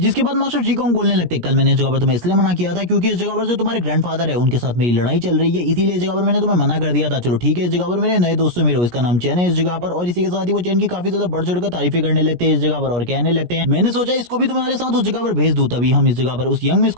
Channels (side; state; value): left; late; 17 ms